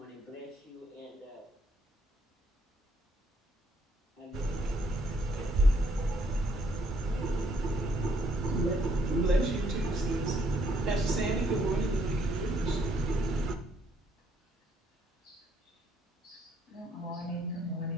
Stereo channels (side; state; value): both; normal; correlation 0.69